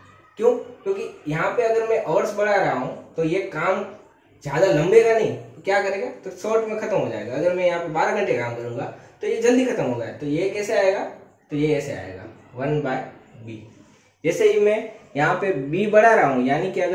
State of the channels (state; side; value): identical; both; correlation 1.00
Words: क्यों, क्योंकि यहाँ पे अगर मैं आवर्स बढ़ा रहा हूँ तो ये काम ज्यादा लंबेगा नहीं, तो क्या करेगा, तो शॉर्ट में खत्म हो जाएगा। अगर मैं यहाँ पे 12 घंटे काम करूंगा तो ये जल्दी खत्म होगा। तो ये कैसे आएगा, तो ये ऐसे आएगा 1/B। जैसे ही मैं यहाँ पे B बढ़ा रहा हूँ, यानी कि